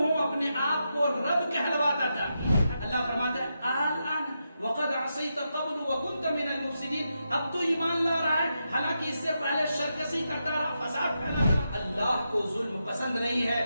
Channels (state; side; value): inverted; both; correlation -0.86